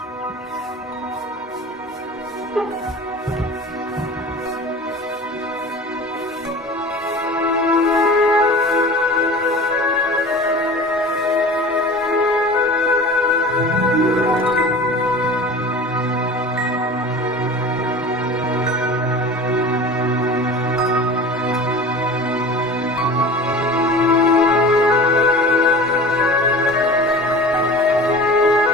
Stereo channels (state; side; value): normal; both; correlation 0.37